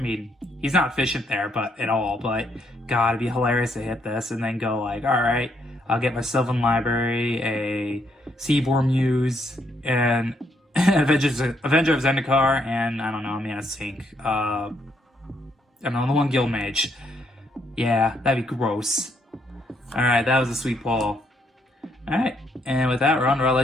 he's not efficient there at all, but God, it'd be hilarious to hit this and then go like, alright, I'll get my Sylvan Library, a Seaboard Muse, and Avenger of Zendikar, and I don't know, Mana Sink. I don't know, the one Guild Mage. Yeah, that'd be gross. Alright, that was a sweet pull. Alright, and with that, we're on to our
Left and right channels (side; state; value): both; normal; correlation 0.73